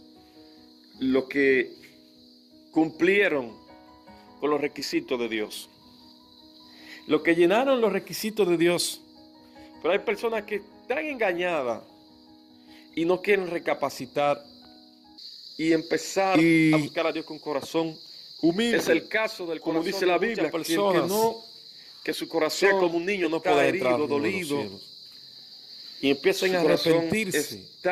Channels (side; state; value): both; identical; correlation 1.00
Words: Los que cumplieron con los requisitos de Dios. Los que llenaron los requisitos de Dios. Pero hay personas que están engañadas y no quieren recapacitar y empezar a buscar a Dios con corazón humilde. Es el caso del corazón, como dice la Biblia, que su corazón como un niño no puede herido, dolido, y empiezan a arrepentirse,